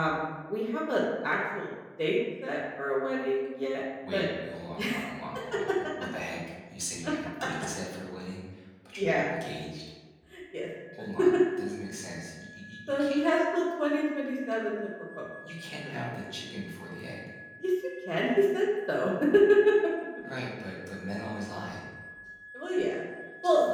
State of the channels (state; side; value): identical; both; correlation 1.00